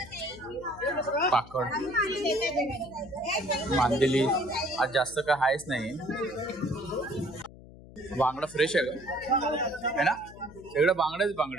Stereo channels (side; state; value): left; noise; hum, 19 dB below the sound